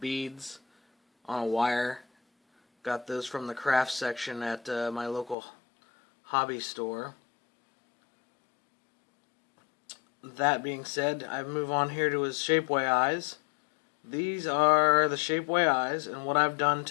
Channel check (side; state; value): right; drops out; at 5.4 s